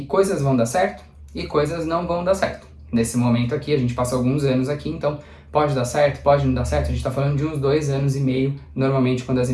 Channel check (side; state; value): both; identical; correlation 1.00